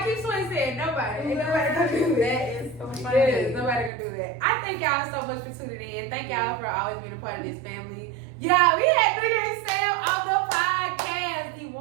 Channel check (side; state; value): left; drops out; at 3.9 s